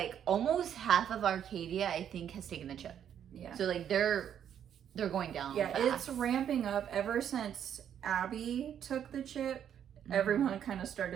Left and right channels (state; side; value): quieter; left; 9.3 dB